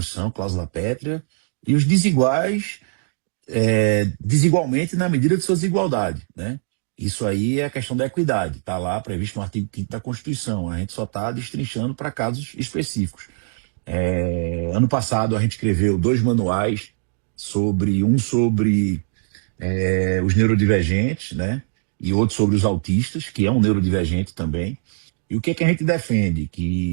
cláusula pétrea, e os desiguais desigualmente na medida de sua desigualdade, né? Isso aí é a questão da equidade, está lá previsto no artigo 5º da Constituição. A gente só está destrinchando para casos específicos. Ano passado a gente escreveu 2 manuais sobre os neurodivergentes, né? E outro sobre os autistas, que é um neurodivergente também. E o que é que a gente defende?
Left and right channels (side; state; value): left; silent; digital silence